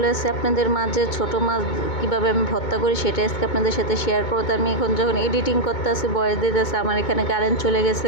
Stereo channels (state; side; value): late; right; 2.2 ms